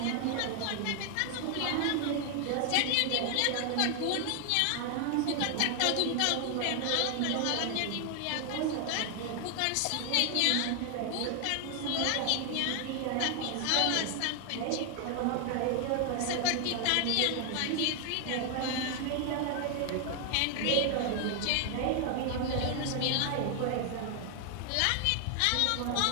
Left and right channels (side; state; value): both; different; correlation 0.00